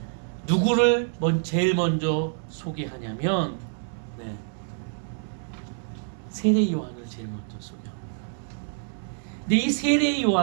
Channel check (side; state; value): left; silent; digital silence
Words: 누구를 제일 먼저 소개하냐면 세례 요한을 제일 먼저 소개합니다. 근데 이 세례